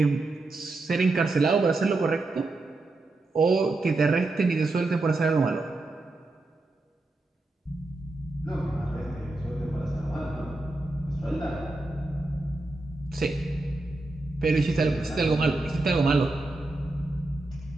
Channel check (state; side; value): quieter; left; 3.0 dB